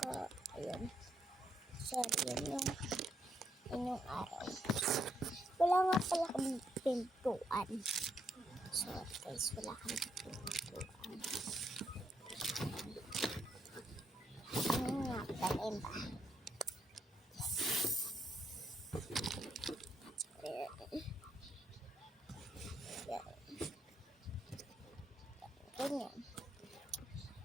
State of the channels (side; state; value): both; normal; correlation 0.76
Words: ayun. Sorry, yun yung araw. Wala nga pala kami pintuan. Sorry guys, wala kami pintuan. Ano nga pala ba? Ganyan.